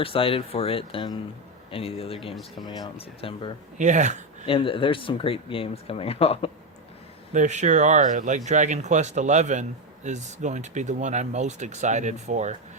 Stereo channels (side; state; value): both; normal; correlation 0.10